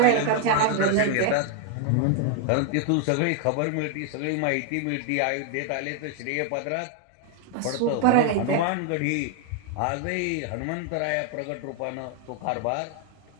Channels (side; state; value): both; different; correlation 0.00